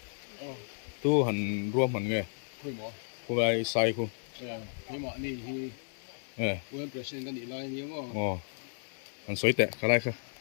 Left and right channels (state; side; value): silent; right; 56 dB below the other